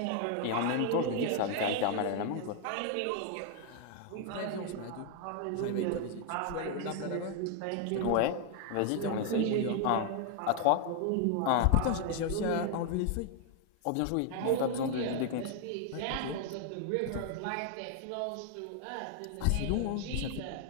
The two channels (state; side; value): different; both; correlation 0.00